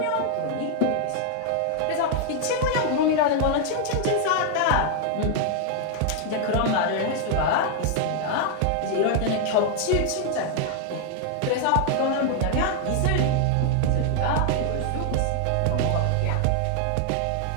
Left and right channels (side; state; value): both; different; correlation 0.00